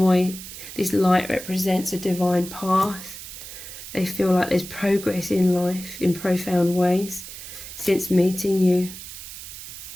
This light represents a divine path. They feel like there's progress in life in profound ways since meeting you.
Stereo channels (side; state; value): right; noise; hiss, 12 dB below the sound